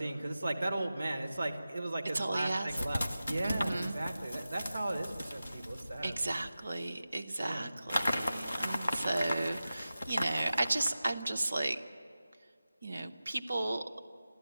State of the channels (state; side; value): inverted; both; correlation -0.94